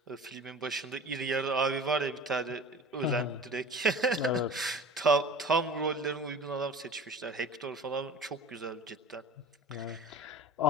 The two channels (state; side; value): normal; both; correlation 0.39